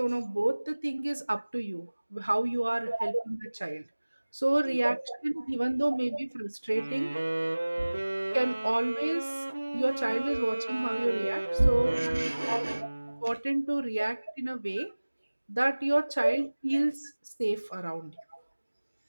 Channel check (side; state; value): both; inverted; correlation -1.00